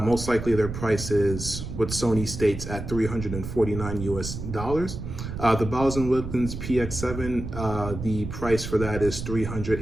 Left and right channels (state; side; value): noise; right; rumble, 7 dB below the sound